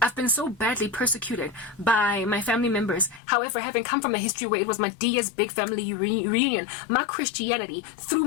I've been so badly persecuted by my family members. However, having come from a history where it was my Dia's big family reunion, my Christianity threw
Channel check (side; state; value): right; drops out; at 3.2 s